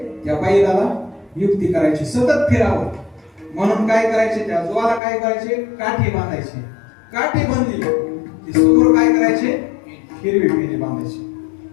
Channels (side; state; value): right; drops out; at 5.0 s